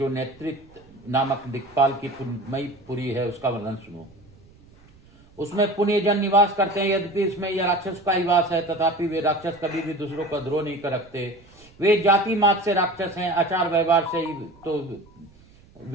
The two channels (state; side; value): noise; right; rumble, 27 dB below the sound